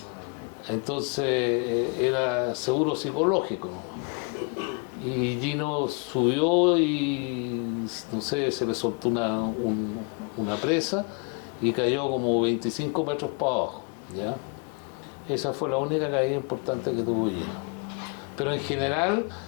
Entonces era seguro psicológico nomás. Y Gino subió y, no sé, se le soltó una presa y cayó como 25 metros para abajo, ¿ya? Esa fue la única caída importante que tuvo Gino. Pero en general,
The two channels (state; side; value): quieter; right; 36.2 dB